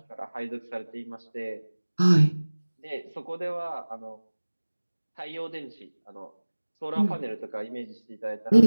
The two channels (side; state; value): both; inverted; correlation -1.00